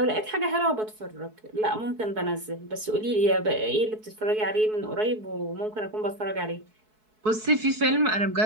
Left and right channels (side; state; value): left; late; 4.6 ms